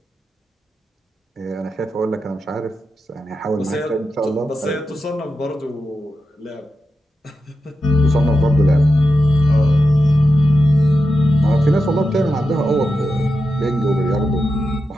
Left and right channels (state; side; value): normal; both; correlation 0.89